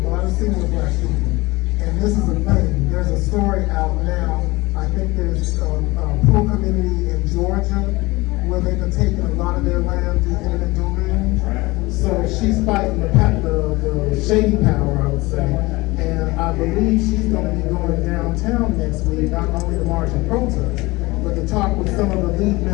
lot of senior black people. And this is a thing. There's a story out now. I think there's a poor community in Georgia where they've been taking a lot of their land through eminent domain. So she's fighting the shady power, I would say. And I believe she's going to be going downtown next week, not only to march and protest, but to talk with some of the lead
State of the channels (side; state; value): right; quieter; 21.8 dB